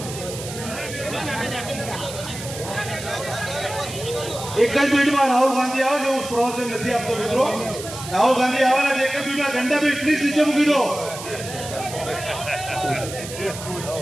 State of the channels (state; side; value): noise; right; hiss, 11 dB below the sound